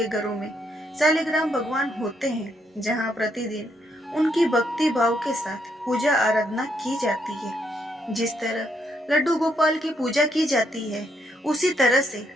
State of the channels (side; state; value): both; normal; correlation 0.75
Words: घरों में शालिग्राम भगवान होते हैं, जहाँ प्रतिदिन उनकी भक्ति भाव के साथ पूजा आराधना की जाती है। जिस तरह लड्डू गोपाल की पूजा की जाती है, उसी तरह से